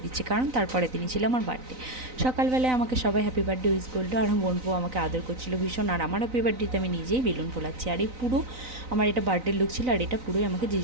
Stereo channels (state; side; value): late; left; 3.9 ms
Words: দিচ্ছে, কারণ তারপরে দিনই ছিল আমার বার্থডে। সকালবেলায় আমাকে সবাই হ্যাপি বার্থডে উইশ করলো, আর বোনপো আমাকে আদর করছিল ভীষণ, আর আমার হ্যাপি বার্থডেতে আমি নিজেই বেলুন ফোলাচ্ছি, আর এই পুরো আমার এটা বার্থডে লুক ছিল, আর এটা পুরোই আমাকে